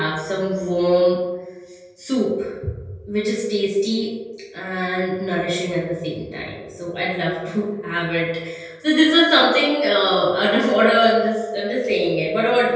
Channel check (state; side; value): identical; both; correlation 1.00